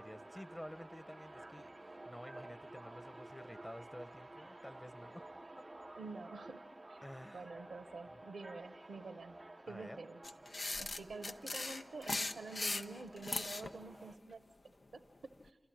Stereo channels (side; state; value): both; normal; correlation 0.93